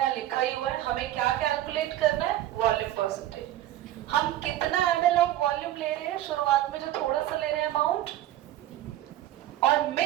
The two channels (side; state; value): left; quieter; 13.6 dB